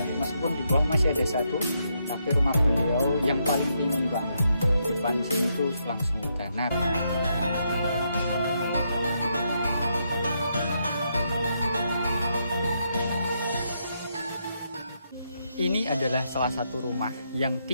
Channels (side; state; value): both; inverted; correlation -0.78